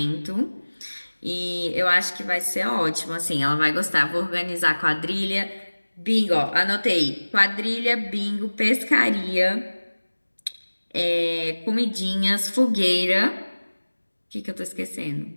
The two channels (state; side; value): inverted; both; correlation -1.00